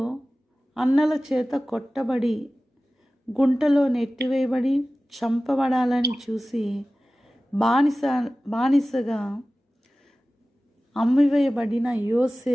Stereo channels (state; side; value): normal; both; correlation 0.96